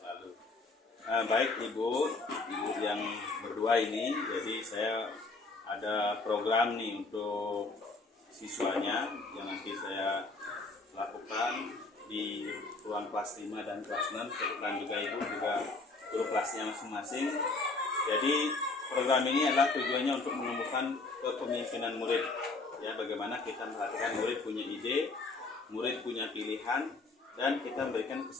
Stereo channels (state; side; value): quieter; right; 3.6 dB